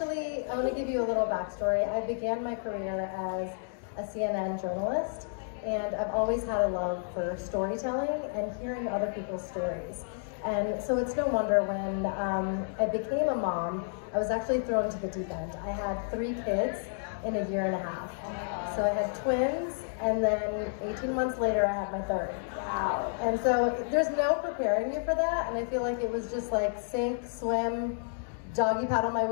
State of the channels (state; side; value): silent; right; digital silence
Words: to give you a little backstory. I began my career as a CNN journalist, and I've always had a love for storytelling and hearing other people's stories. And so it's no wonder when I became a mom, I was actually thrown into the deep end. I had 3 kids in a year and a half. So I had twins, and then 18 months later I had my 3rd. Wow. And so there's no preparing you for that, and I feel like it was just like sink, swim, doggy paddle my